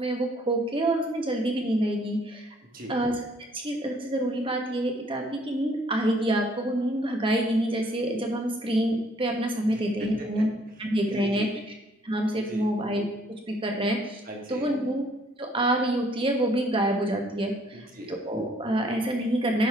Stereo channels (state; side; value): normal; both; correlation 0.63